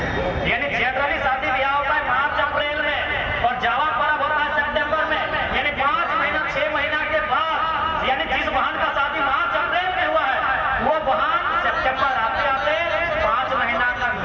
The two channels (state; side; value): identical; both; correlation 1.00